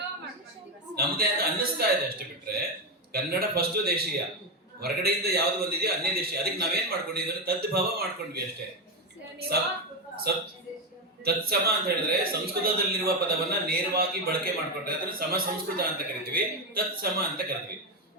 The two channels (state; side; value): normal; both; correlation 0.10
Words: ನಮ್ದೇ ಅಂತ ಅನ್ನಿಸ್ತಾ ಇದೆ ಅಷ್ಟೇ. ಬಿಟ್ರೆ ಕನ್ನಡ ಫಸ್ಟ್ ದೇಶೀಯ, ಹೊರಗಡೆಯಿಂದ ಯಾವ್ದು ಬಂದಿದೆಯೋ ಅನ್ಯ ದೇಶೀಯ. ಅದಕ್ಕೆ ನಾವೇನ್ ಮಾಡ್ಕೊಂಡಿದ್ವಿ, ತದ್ಭವ ಮಾಡ್ಕೊಂಡ್ವಿ ಅಷ್ಟೇ. ತತ್ಸಮ ಅಂತ ಹೇಳಿದ್ರೆ ಸಂಸ್ಕೃತದಲ್ಲಿರುವ ಪದವನ್ನ ನೇರವಾಗಿ ಬಳಕೆ ಮಾಡ್ಕೊಂಡ್ರೆ ಅದನ್ನ ಸಮ ಸಂಸ್ಕೃತ ಅಂತ ಕರಿತೀವಿ, ತತ್ಸಮ ಅಂತ ಕರಿತೀವಿ.